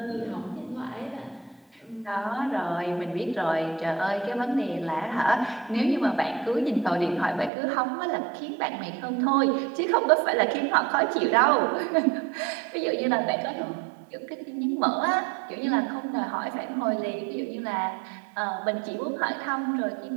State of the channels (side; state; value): left; drops out; at 7.5 s